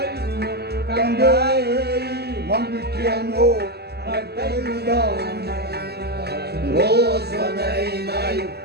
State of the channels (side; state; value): left; late; 0.47 ms